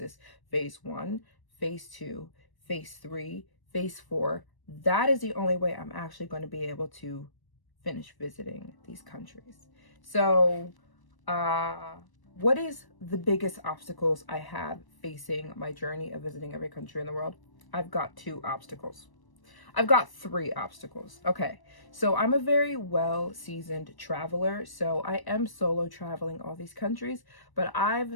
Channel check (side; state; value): right; late; 1.0 ms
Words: phase 1, phase 2, phase 3, phase 4, that is the only way I'm actually going to be able to finish visiting these countries. So, what is the biggest obstacles I have facing my journey of visiting every country in the world? I've got 2 obstacles. I've got 3 obstacles. Okay, so I'm a very well-seasoned traveler, so I am solo traveling all these countries, but